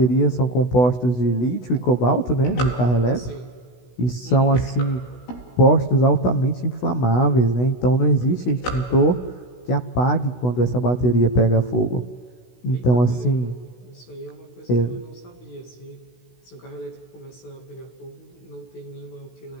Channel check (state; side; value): late; right; 16 ms